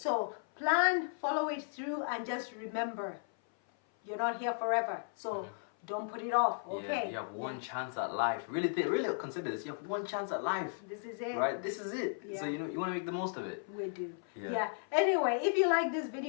plan, follow it through, and just remember, you're not here forever. So don't put it off, okay? You have one chance at life. Really consider this. You have one chance at life. This is it. Right? This is it. So you want to make the most of it. We do. Yeah. Anyway, if you like this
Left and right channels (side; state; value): right; silent; 54 dB below the other